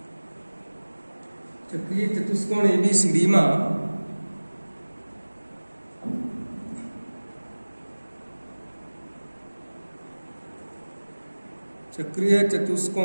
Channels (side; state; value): both; inverted; correlation -1.00